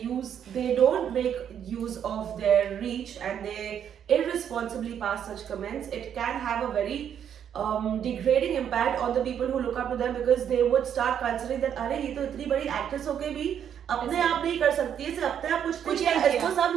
don't make use of their reach and they irresponsibly pass such comments, it can have a very degrading impact on the people who look up to them, because they would start considering that, अरे ये तो इतनी बड़ी actress होके भी अपने आप नहीं कर सकती है, अपने आप कुछ नहीं है, इसको सब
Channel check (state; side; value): quieter; left; 8.9 dB